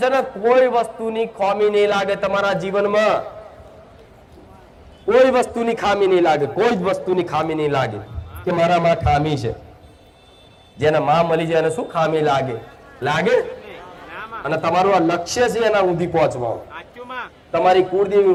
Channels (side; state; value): both; identical; correlation 1.00